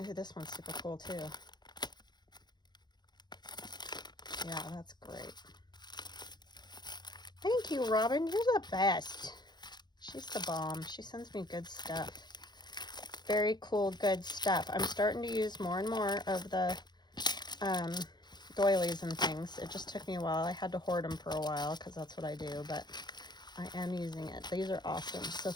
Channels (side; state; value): right; late; 0.21 ms